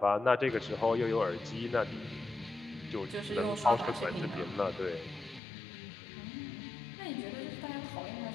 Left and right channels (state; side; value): drops out; right; at 5.4 s